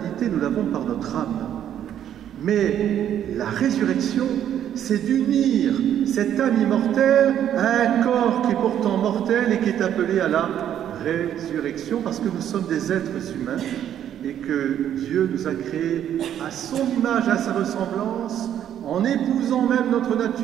nous l'avons par notre âme. Mais la résurrection, c'est d'unir cette âme immortelle à un corps qui est pourtant mortel et qui est appelé à la résurrection, parce que nous sommes des êtres humains et que Dieu nous a créés à son image, à sa ressemblance, en épousant même notre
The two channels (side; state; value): left; quieter; 10.3 dB